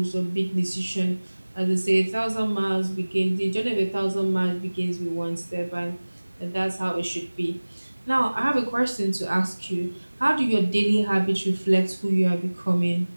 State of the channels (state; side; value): inverted; both; correlation -1.00